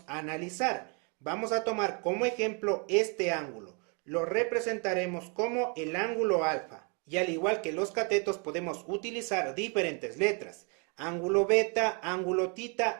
analizar. Vamos a tomar como ejemplo este ángulo. Lo representaremos como el ángulo alfa. Y al igual que los catetos podemos utilizar diferentes letras. Ángulo beta, ángulo tita,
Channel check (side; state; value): left; quieter; 35.6 dB